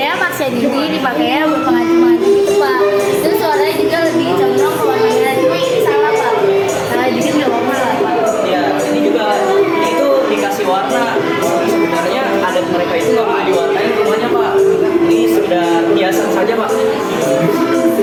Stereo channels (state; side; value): identical; both; correlation 1.00